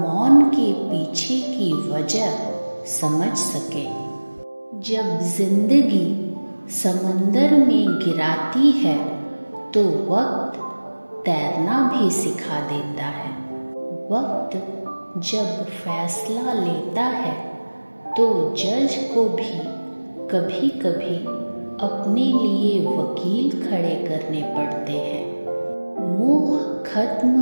के पीछे की वजह समझ सके। जब जिंदगी समंदर में गिराती है तो वक्त तैरना भी सिखा देता है। वक्त जब फैसला लेता है तो जज को भी कभी कभी अपने लिए वकील खड़े करने पड़ते हैं। मोह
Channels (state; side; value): inverted; both; correlation -1.00